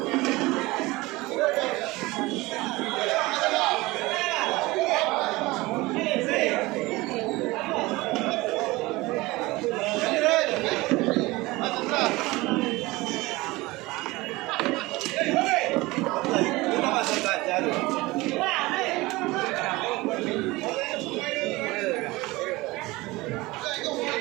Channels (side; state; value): left; quieter; 21.1 dB